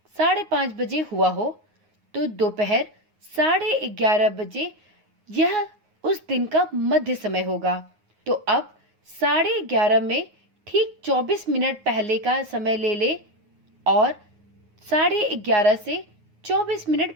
5:30 बजे हुआ हो तो दोपहर 11:30 बजे यह उस दिन का मध्य समय होगा। तो अब 11:30 में ठीक 24 मिनट पहले का समय ले ले और 11:30 से 24 मिनट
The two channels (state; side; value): late; left; 9.5 ms